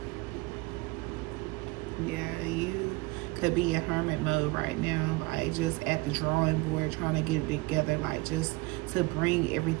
Yeah, you could be in hermit mode right now, like just at the drawing board, trying to get it together, like just to bring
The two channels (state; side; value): quieter; left; 23.4 dB